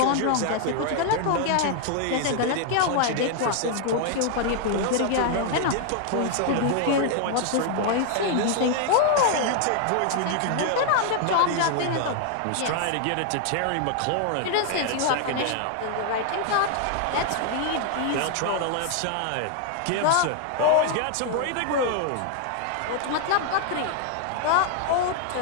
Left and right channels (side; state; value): both; different; correlation 0.00